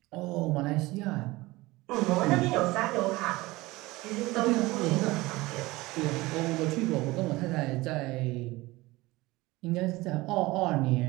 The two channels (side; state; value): left; quieter; 20.5 dB